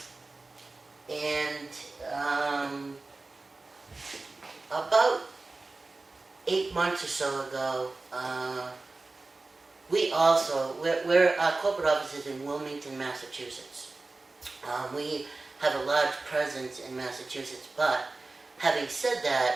About 8 8 months or so ago, our corporate office is in Wilmington, Massachusetts. We have a large presence in Massachusetts, but having said that,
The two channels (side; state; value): left; quieter; 3.4 dB